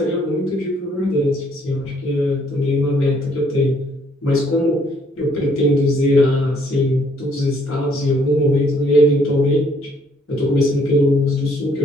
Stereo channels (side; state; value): both; normal; correlation 0.65